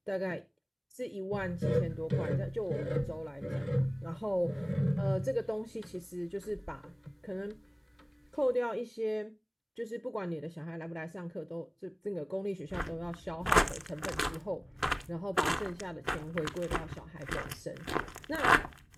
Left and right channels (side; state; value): both; identical; correlation 1.00